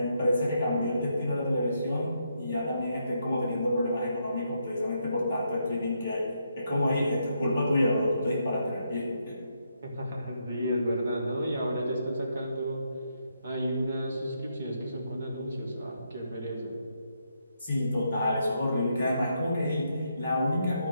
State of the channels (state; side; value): inverted; both; correlation -0.78